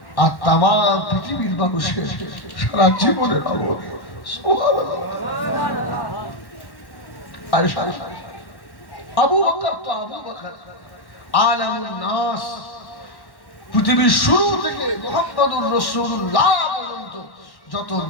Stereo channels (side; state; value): right; late; 1.1 ms